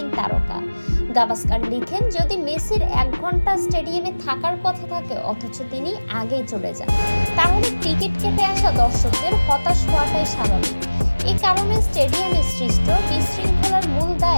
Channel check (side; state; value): both; inverted; correlation -1.00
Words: তারকা। গাভাস্কার লিখেন, যদি মেসির 1 ঘন্টা স্টেডিয়ামে থাকার কথা থাকে অথচ তিনি আগেই চলে যান, তাহলে টিকিট কেটে আসা দর্শকদের হতাশ হওয়াটাই স্বাভাবিক। এই কারণে স্টেডিয়ামে সৃষ্ট বিশৃঙ্খলার মূল